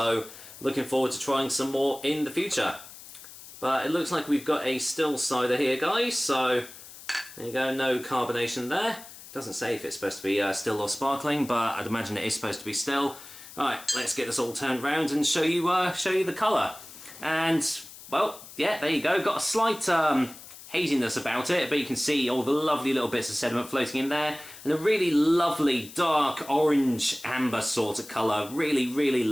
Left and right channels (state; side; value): noise; left; hiss, 17 dB below the sound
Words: looking forward to trying some more in the future. But it looks like we've got a still cider here, guys, so there you go, no carbonation there. Doesn't say if it's supposed to be still or sparkling, but I'd imagine it is supposed to be still. Right, let's get this all turned round and show you the colour. And, well, yeah, there you go. Got a slight haziness about it, but you can see all the lovely little bits of sediment floating in there. And a really lovely dark orange amber sort of colour. Really, really